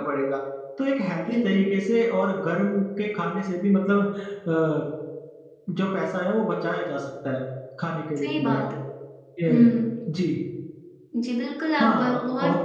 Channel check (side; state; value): both; identical; correlation 1.00